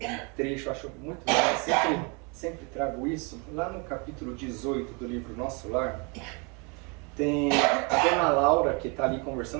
trecho, acho muito legal, sempre trago isso. Lá no capítulo 18 do livro Nosso Lar, tem a dona Laura que está ali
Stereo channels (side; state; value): left; quieter; 32.3 dB